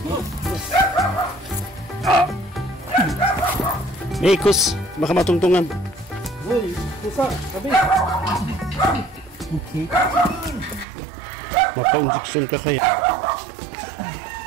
May ikos, baka matungtungan. Uy, pusa, sabi. Okay. Maka-injection ka kaya.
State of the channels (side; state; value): left; drops out; at 10.9 s